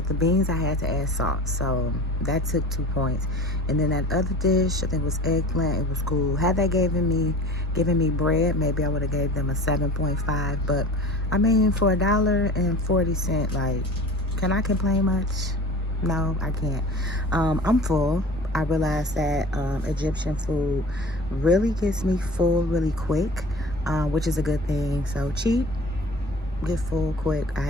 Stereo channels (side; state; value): both; normal; correlation 0.40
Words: The beans, I had to add salt, so that took 2 points. And then that other dish, I think it was eggplant, it was cool. Had they given me bread, maybe I would have gave them a 7.5. But I mean, for $1.40, like, can I complain much? No, I can't. I'm full. I realized that Egyptian food really gets me full really quick, which is a good thing. So cheap, get full quick. I